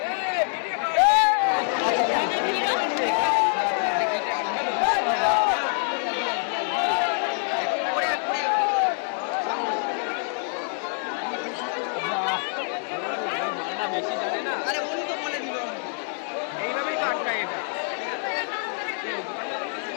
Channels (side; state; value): right; silent; 56 dB below the other